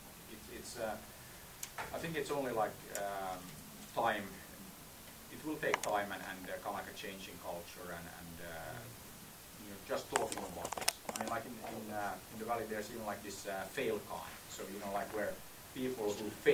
it's I think it's only like time. It will take time and kind of like a change in culture and just talking about this. I mean, like in the Valley, there's even like this fail con. So like where people who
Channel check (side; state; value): both; identical; correlation 1.00